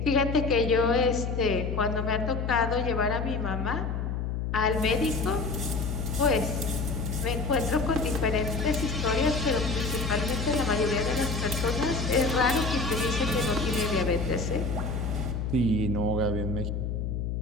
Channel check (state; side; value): noise; left; hum, 2 dB below the sound